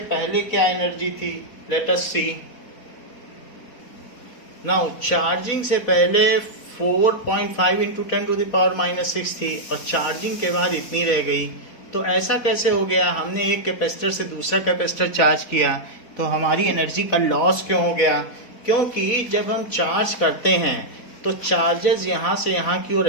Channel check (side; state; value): right; late; 4.4 ms